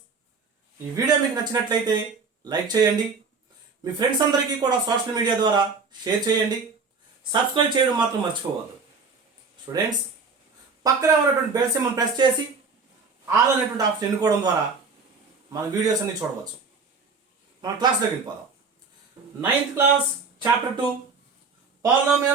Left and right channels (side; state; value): left; quieter; 4.7 dB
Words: ఈ video మీకు నచ్చినట్లయితే లైక్ చేయండి, మీ ఫ్రెండ్స్ అందరికీ కూడా సోషల్ మీడియా ద్వారా షేర్ చేయండి, సబ్స్క్రైబ్ చేయడం మాత్రం మర్చిపోవద్దు. స్టూడెంట్స్, పక్కన ఉన్నటువంటి బెల్ సింబల్ ప్రెస్ చేసి ఆల్ అనేటువంటి ఆప్షన్ ఎన్నుకోవడం ద్వారా మన వీడియోస్ అన్ని చూడవచ్చు. మన క్లాస్లోకి వెళ్ళిపోదాం. 9th class chapter 2